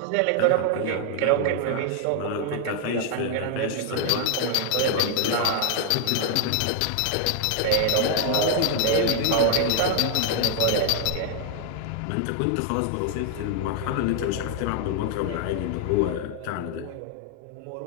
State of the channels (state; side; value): different; both; correlation 0.00